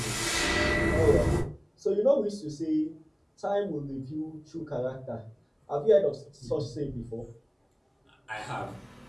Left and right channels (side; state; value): both; identical; correlation 1.00